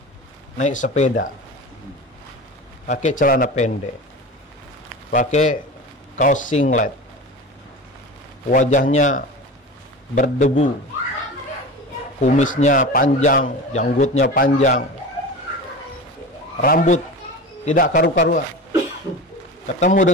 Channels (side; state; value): both; normal; correlation 0.31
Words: naik sepeda, pakai celana pendek, pakai kaos singlet, wajahnya berdebu, kumisnya panjang, janggutnya panjang, rambut tidak karu-karuan. Ketemu